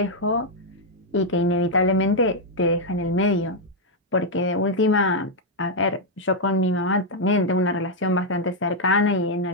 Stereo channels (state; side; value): normal; both; correlation -0.02